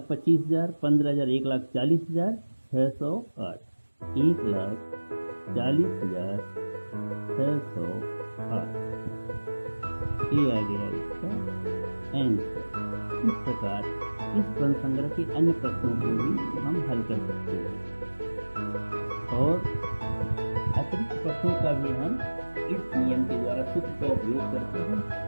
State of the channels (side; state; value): both; inverted; correlation -1.00